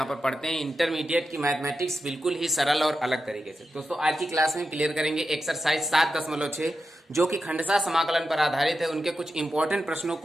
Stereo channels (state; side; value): normal; both; correlation 0.89